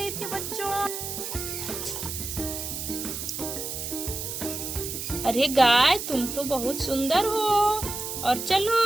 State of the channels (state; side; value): noise; right; hiss, 5 dB below the sound